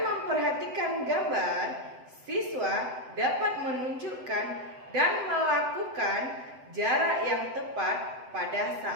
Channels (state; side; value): late; left; 7.9 ms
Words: gambar, siswa dapat menunjukkan dan melakukan jarak yang tepat pada